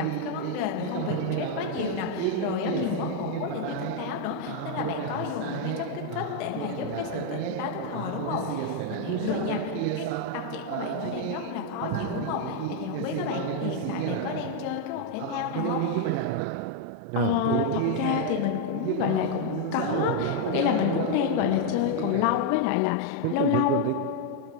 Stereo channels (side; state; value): both; different; correlation 0.00